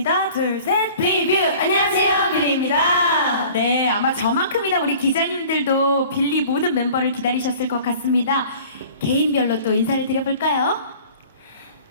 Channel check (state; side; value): inverted; both; correlation -0.46